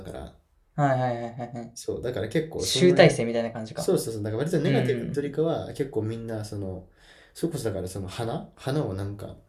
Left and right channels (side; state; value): both; identical; correlation 1.00